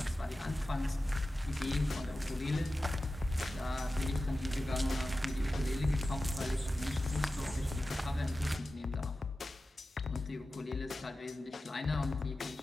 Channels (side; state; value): both; normal; correlation 0.94